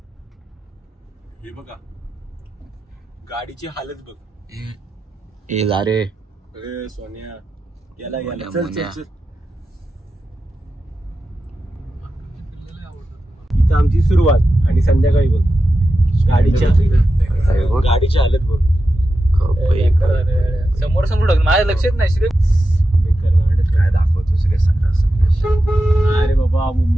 हे बघा गाडीची हालत बघ. ए जा रे. अरे सोन्या याला चल. इथं आमची सुरुवात आणि संध्याकाळी बघ गाडीच्या हालत बघ. समोर माझ्या लक्षात नाही. श्री काय दाखवतोस रे सगळं. अरे बाबा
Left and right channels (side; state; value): both; normal; correlation 0.91